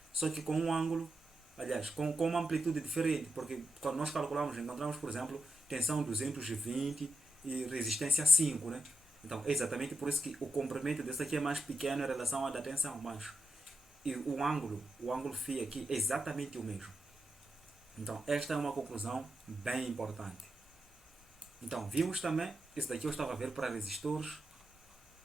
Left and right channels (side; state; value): both; normal; correlation 0.86